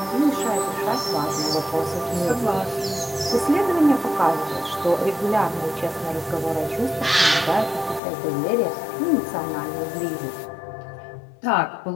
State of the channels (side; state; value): right; drops out; at 8.0 s